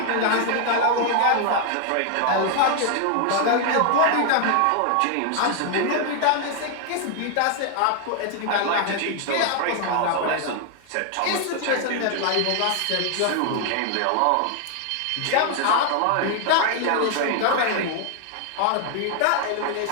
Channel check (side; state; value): both; different; correlation 0.00